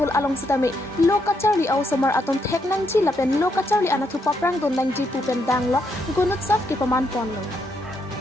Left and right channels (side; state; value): both; normal; correlation 0.77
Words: along Sitami Lokacharli au Samar aton Theknang ji lapen Lokacharli anathu paprang don lang ji pupen danglo Gunut Saf ki Pamanpon lo.